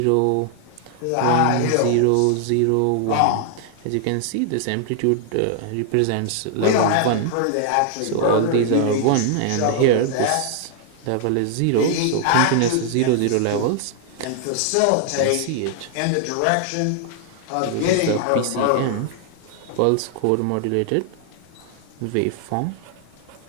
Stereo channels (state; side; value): different; both; correlation 0.00